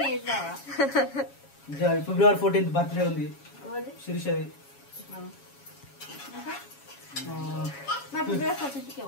ఫిబ్రవరి 14th బర్త్డే ఉంది శిరీషది.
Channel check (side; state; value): right; late; 7.2 ms